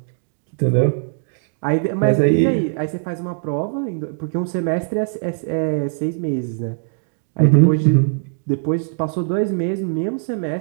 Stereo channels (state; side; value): silent; left; digital silence